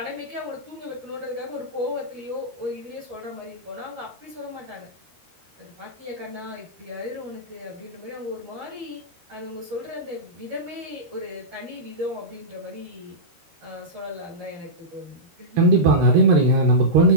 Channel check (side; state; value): left; late; 13 ms